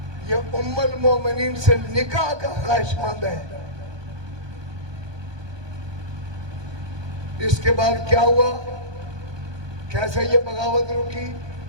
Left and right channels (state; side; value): late; left; 1.2 ms